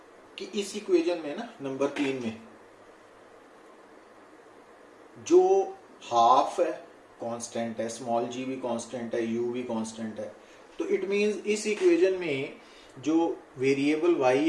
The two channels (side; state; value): both; identical; correlation 1.00